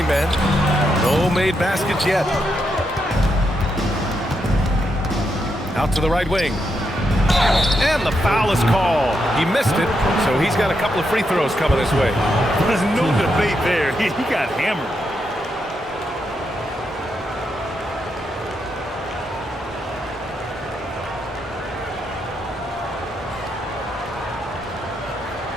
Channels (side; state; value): both; normal; correlation 0.81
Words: No made baskets yet. Out to the right wing. And the foul is called. He missed it, so he's got a couple of free throws coming his way. There's no debate there. He got hammered.